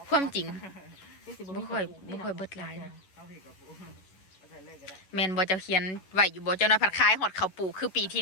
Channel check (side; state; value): right; late; 11 ms